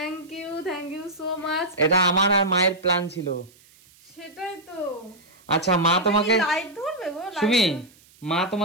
you so much. এটা আমার আর মায়ের প্ল্যান ছিল। সেটাই তো। আচ্ছা মা তোমাকে, লাইট ধরবে গো? সুমি মা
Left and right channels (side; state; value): right; noise; hiss, 28 dB below the sound